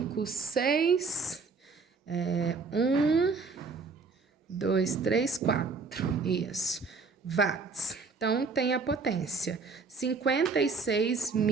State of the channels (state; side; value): quieter; left; 4.4 dB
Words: 6, 1, 2, 3, 4, isso, watts. Então, tem a potência, 56